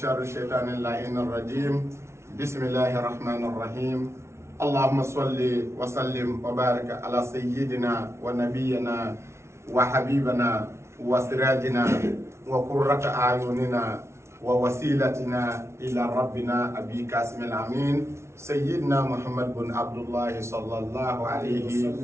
الشيطان اللعين الرجيم. بسم الله الرحمن الرحيم. اللهم صل وسلم وبارك على سيدنا ونبينا وحبيبنا وسراجنا وقرة أعيننا ووسيلتنا إلى ربنا أبي قاسم الأمين سيدنا محمد بن عبد الله صلى الله عليه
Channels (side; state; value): left; late; 0.13 ms